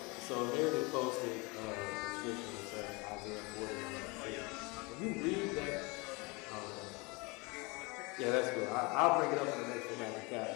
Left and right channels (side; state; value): right; quieter; 27.4 dB